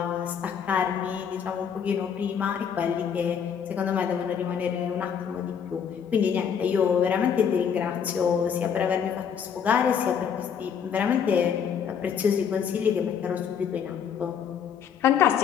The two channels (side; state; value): right; quieter; 7.6 dB